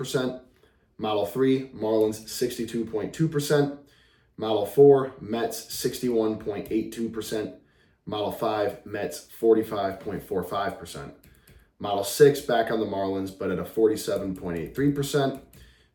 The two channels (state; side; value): identical; both; correlation 1.00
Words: Model 3, Marlins 62.2%. Model 4, Mets 61.82%. Model 5, Mets 45.45%. Model 6, back on the Marlins, but at a 47.83%.